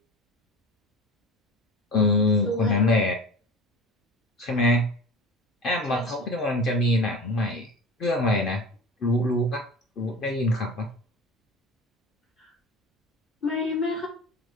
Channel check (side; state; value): both; normal; correlation 0.35